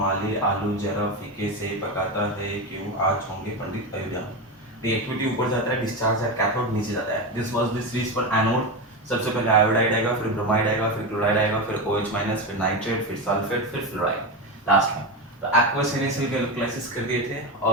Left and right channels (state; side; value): normal; both; correlation 0.17